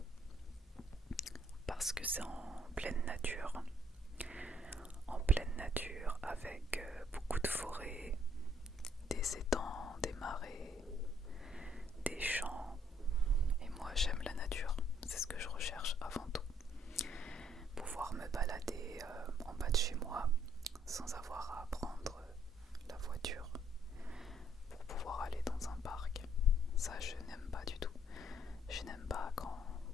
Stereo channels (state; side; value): normal; both; correlation 0.67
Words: parce que c'est en pleine nature avec beaucoup de forêts, des étangs, des marais, des champs. Et moi j'aime la nature, c'est ce que je recherche avant tout. Pouvoir me balader en bas de chez moi sans avoir à prendre la voiture pour pouvoir aller dans un parc. Ça je n'aime pas du tout. Je n'aime pas quand